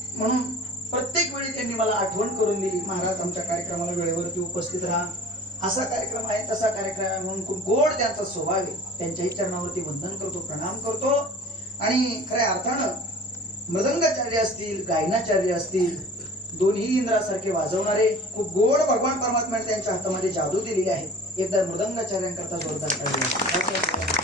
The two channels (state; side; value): normal; both; correlation 0.42